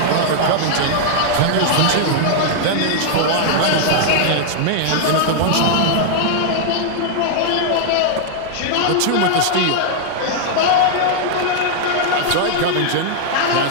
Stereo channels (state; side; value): different; both; correlation 0.00